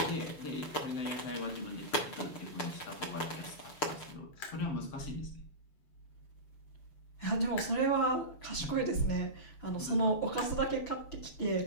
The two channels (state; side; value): late; right; 6.9 ms